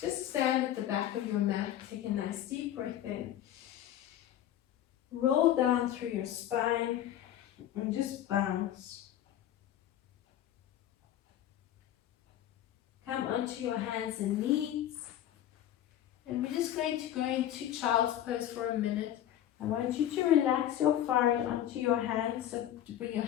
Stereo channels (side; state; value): right; quieter; 11.6 dB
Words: stand at the back of your mat. Take a nice deep breath in. Roll down through your spine and just bounce. Come onto your hands and knees. And we're just going to go into child's pose for a minute. I want you to relax your forehead onto your hands, so to bring your